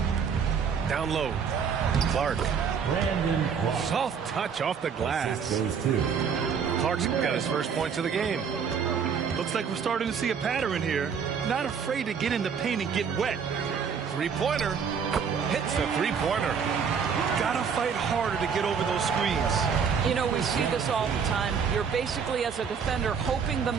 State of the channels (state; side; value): quieter; left; 6.6 dB